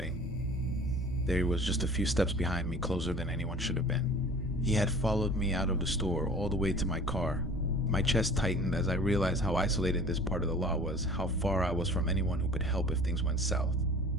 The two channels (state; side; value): normal; both; correlation 0.45